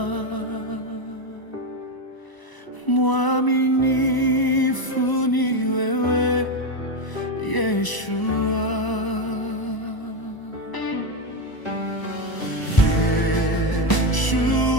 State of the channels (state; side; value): late; right; 1.0 ms